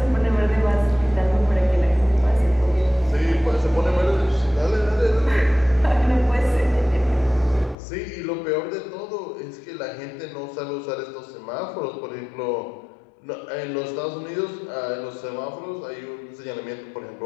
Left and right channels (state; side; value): drops out; right; at 7.8 s